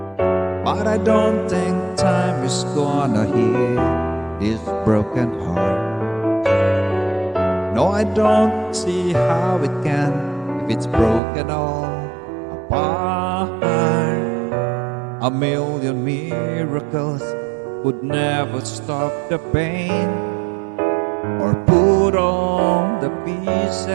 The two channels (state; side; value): drops out; left; at 11.2 s